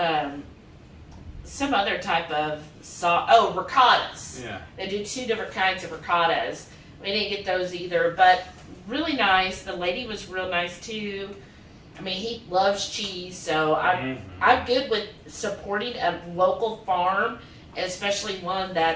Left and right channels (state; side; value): identical; both; correlation 1.00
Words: some other type of sauce. Oh, ricottas. Yeah. They do 2 different kinds of ricottas. We didn't get those either, but really nice. The lady was real nice too. I mean, he loves cheese, so I'm good with supporting a local farm, especially one